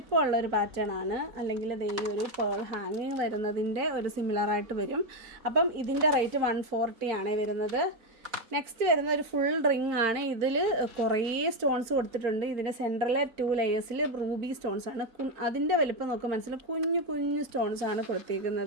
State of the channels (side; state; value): left; late; 4.4 ms